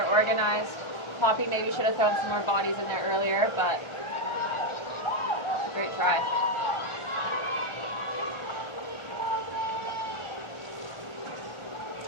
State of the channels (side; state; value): right; late; 1.4 ms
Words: organized. Poppy maybe should have thrown some more bodies in there earlier, but great try.